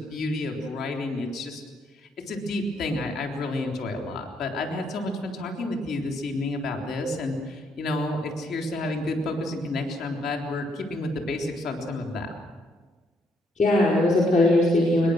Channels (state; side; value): normal; both; correlation 0.73